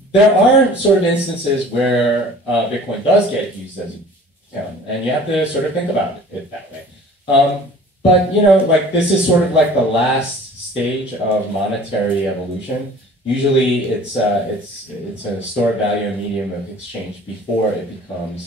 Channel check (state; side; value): normal; both; correlation 0.47